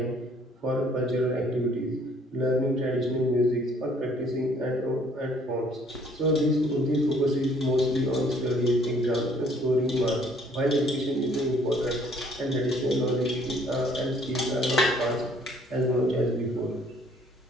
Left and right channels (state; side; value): normal; both; correlation 0.60